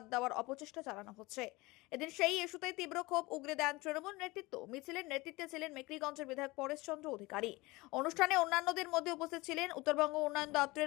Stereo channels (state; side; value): quieter; right; 22.2 dB